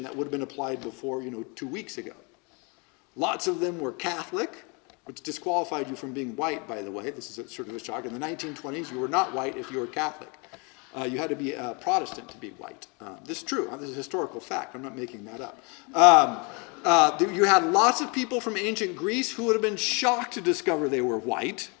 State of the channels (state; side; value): quieter; right; 31.7 dB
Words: that would have been applied before, 2 weeks ago. Lots of them were Catholic, which disqualified you from being white, by the way. This is sort of a shock. In the 1920s, you were not white if you were Catholic. You had to be a Protestant to be white. This is true. This is a historical fact. I'm not making that up. You had lots of people from ancient Greece who would have been shocked to discover they were white.